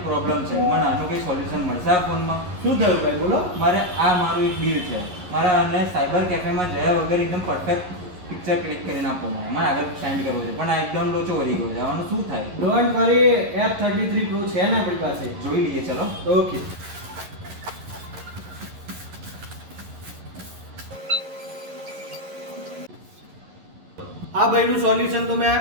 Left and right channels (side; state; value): left; late; 11 ms